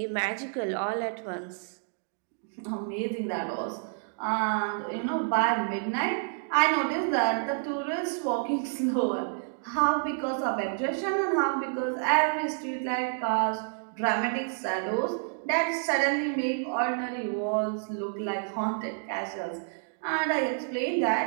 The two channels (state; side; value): silent; left; digital silence